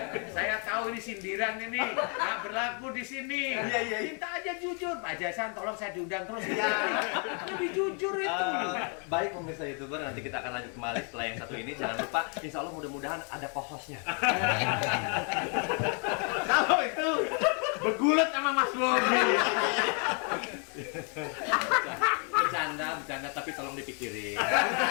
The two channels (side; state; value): right; quieter; 38.9 dB